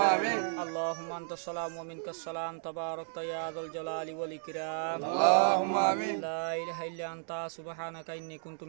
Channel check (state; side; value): silent; left; digital silence